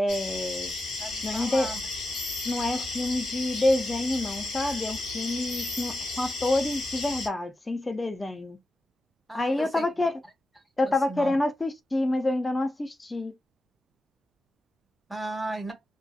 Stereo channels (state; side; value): normal; both; correlation 0.90